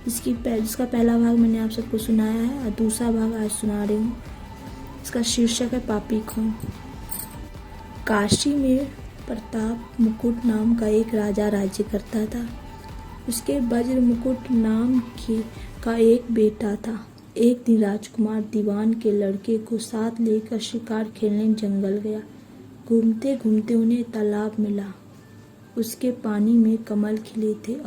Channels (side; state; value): both; identical; correlation 1.00